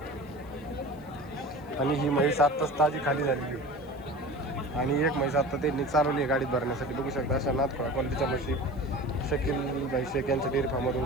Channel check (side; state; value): left; noise; hiss, 30 dB below the sound